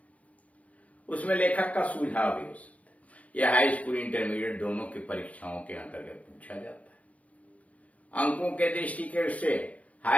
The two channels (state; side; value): late; right; 0.066 ms